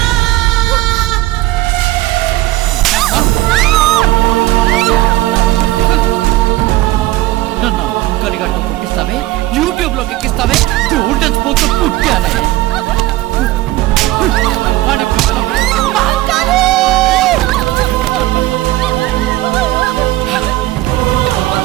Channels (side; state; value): left; quieter; 17.1 dB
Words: నన్ను అంకలిగట్టు పుట్టిస్తావే, యూట్యూబ్ లోకి ఎక్కిస్తావే, పుట్టానే